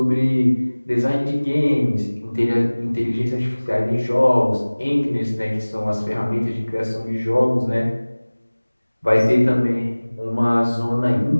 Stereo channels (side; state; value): both; inverted; correlation -1.00